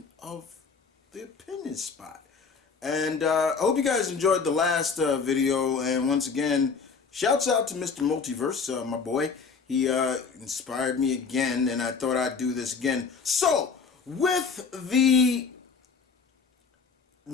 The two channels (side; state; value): right; quieter; 5.3 dB